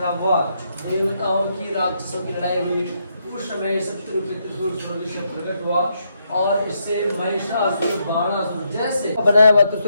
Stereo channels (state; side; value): inverted; both; correlation -0.78